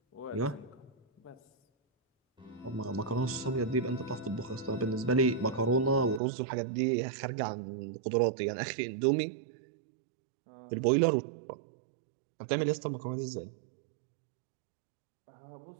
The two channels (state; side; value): drops out; left; at 6.2 s